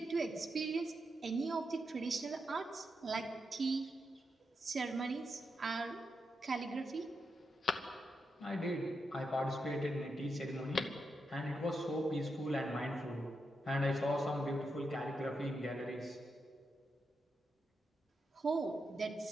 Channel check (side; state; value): both; normal; correlation 0.85